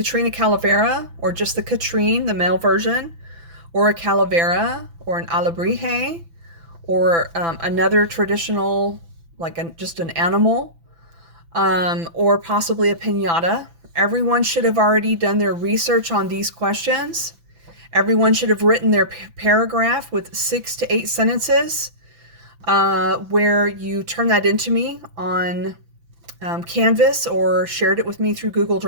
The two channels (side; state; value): left; late; 6.0 ms